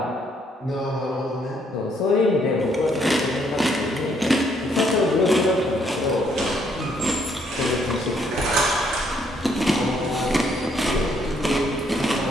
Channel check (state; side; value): normal; both; correlation 0.70